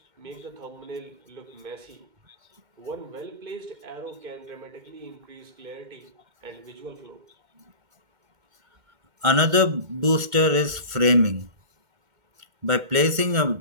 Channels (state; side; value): late; left; 2.1 ms